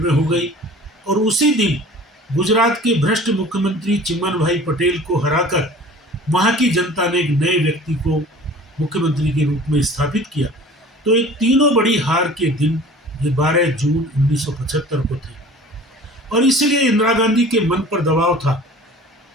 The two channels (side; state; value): both; normal; correlation 0.44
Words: में हो गई। और उसी दिन गुजरात के भ्रष्ट मुख्यमंत्री चिमन भाई पटेल को हराकर वहाँ की जनता ने एक नए व्यक्ति को मुख्यमंत्री के रूप में स्थापित किया। तो ये तीनों बड़ी हार के दिन ये 12 जून 1975 को थे। और इसलिए इंदिरा गांधी के मन पर दबाव था